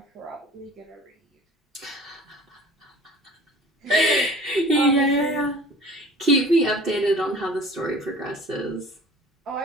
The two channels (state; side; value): normal; both; correlation 0.45